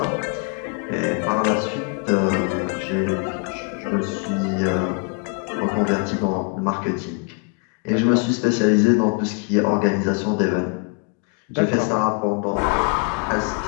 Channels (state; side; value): quieter; right; 33.5 dB